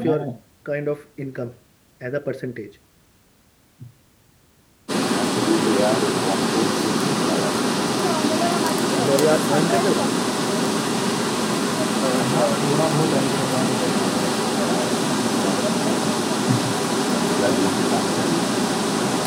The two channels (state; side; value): identical; both; correlation 1.00